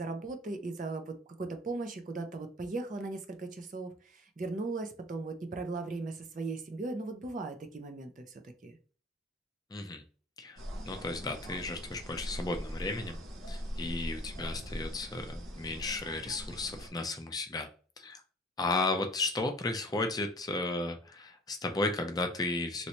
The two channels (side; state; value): both; normal; correlation 0.47